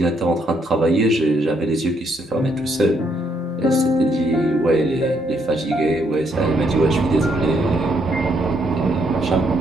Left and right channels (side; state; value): both; normal; correlation 0.73